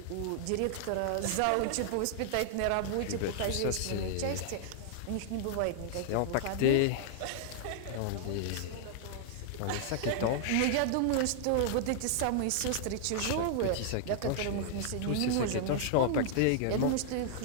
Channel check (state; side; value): different; both; correlation -0.01